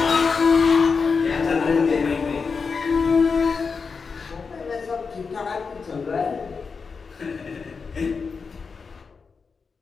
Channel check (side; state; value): right; quieter; 5.1 dB